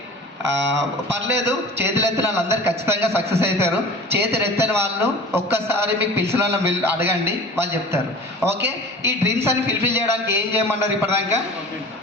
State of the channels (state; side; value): normal; both; correlation 0.39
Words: పర్లేదు. చేతులు ఎత్తిన వాళ్ళందరూ ఖచ్చితంగా సక్సెస్ అవుతారు. చేతులు ఎత్తని వాళ్ళు ఒక్కసారి మీకు పిలిచిన వాళ్ళని అడగండి, వాళ్ళు చెప్తారు. ఓకే, ఈ డ్రీమ్స్ అని ఫుల్ఫిల్ చేయడానికి ఏం చేయమన్నారు? ఇప్పటిదాకా